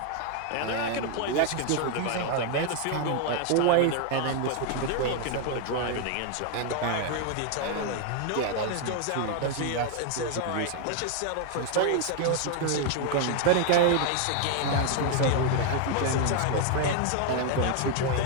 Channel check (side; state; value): both; different; correlation 0.00